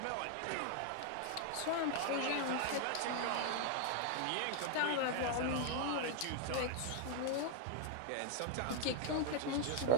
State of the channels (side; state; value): both; different; correlation 0.00